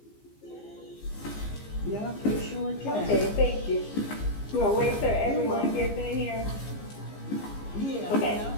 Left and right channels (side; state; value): right; late; 15 ms